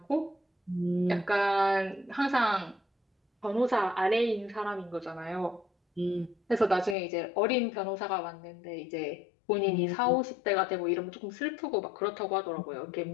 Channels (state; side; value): drops out; right; at 7.0 s